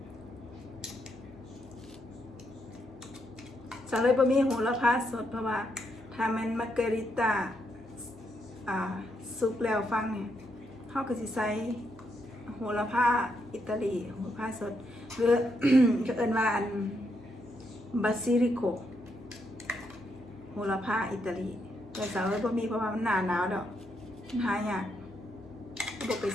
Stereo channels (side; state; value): both; normal; correlation 0.79